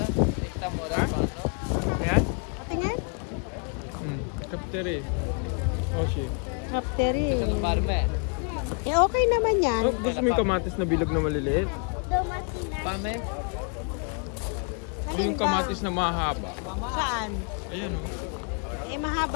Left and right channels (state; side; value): quieter; right; 39.8 dB